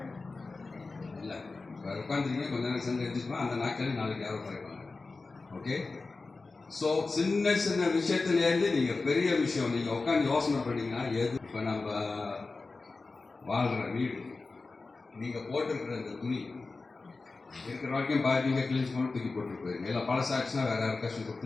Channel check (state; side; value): quieter; right; 3.8 dB